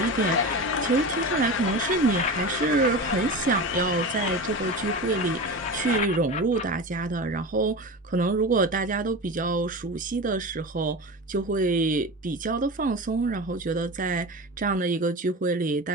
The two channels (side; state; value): both; normal; correlation 0.27